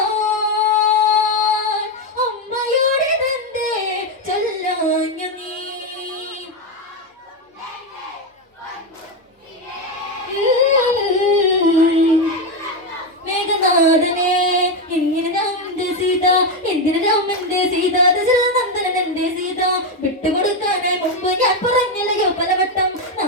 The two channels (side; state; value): both; normal; correlation 0.08